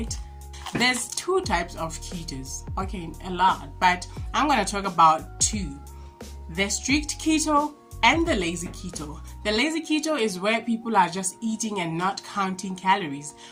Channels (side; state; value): both; identical; correlation 1.00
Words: There's 2 types of ketos. Okay, a lot, but I'm going to talk about 2. The strict keto and the lazy keto. The lazy keto is where people are just eating and not counting calories.